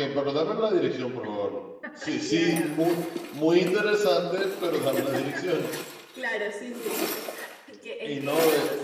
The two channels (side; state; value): both; identical; correlation 1.00